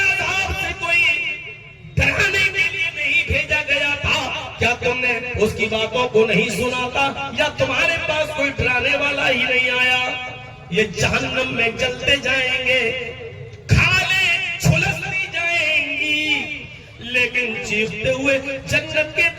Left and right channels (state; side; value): identical; both; correlation 1.00